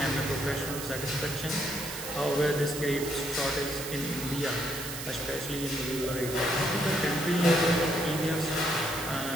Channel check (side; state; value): right; noise; hiss, 8 dB below the sound